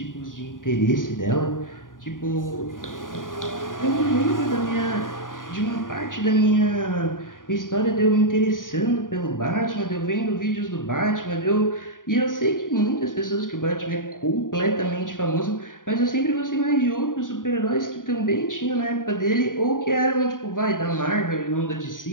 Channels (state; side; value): late; right; 0.89 ms